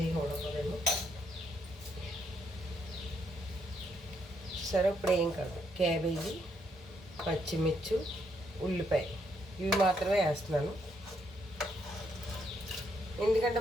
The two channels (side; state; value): both; normal; correlation 0.75